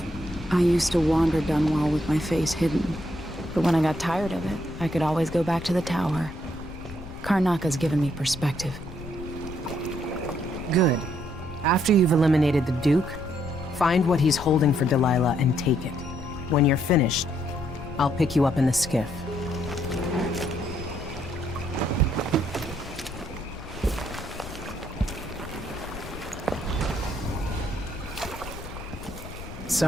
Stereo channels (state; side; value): noise; left; rumble, 13 dB below the sound